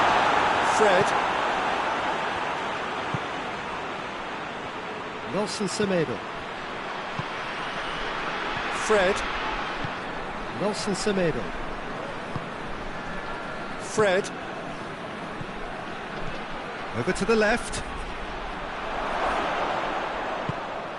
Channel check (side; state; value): both; identical; correlation 1.00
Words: Fred. Nelson Semedo. Fred. Nelson Semedo. Fred. Over to the left.